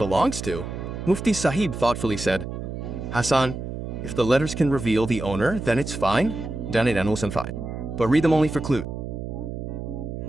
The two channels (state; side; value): noise; right; hum, 7 dB below the sound